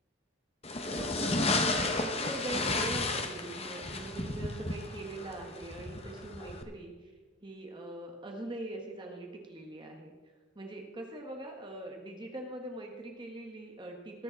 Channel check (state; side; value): normal; both; correlation 0.32